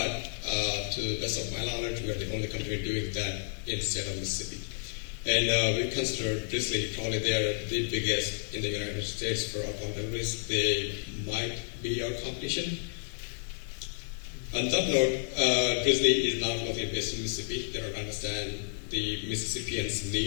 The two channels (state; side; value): silent; right; digital silence